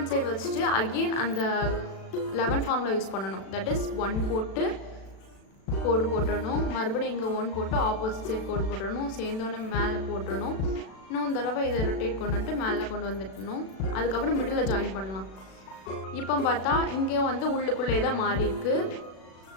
சைடு வச்சுட்டு அகெயின் அந்த 11 ஃபார்முலா யூஸ் பண்ணணும். தட் இஸ் 1 போட்டு கோடு போட்டுடணும், மறுபடியும் இங்கே 1 போட்டு ஆப்போசிட் சைட் கோடு போட்டுடணும், சேர்ந்தோன்னே மேலே போட்டுடணும். இன்னும் தடவை இதை ரொட்டேட் கொண்டு வந்துட்டு மேலே கொண்டு வந்துட்டணும். அதுக்கப்புறம் மிடில் ஜாயின் பண்ணலாம். இப்போ பார்த்தா இங்கே வந்து உள்ளுக்குள்ளே தான் மாறி இருக்கு,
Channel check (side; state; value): right; late; 36 ms